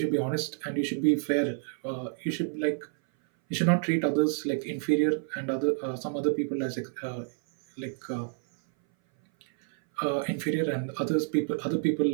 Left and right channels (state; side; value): silent; left; 59 dB below the other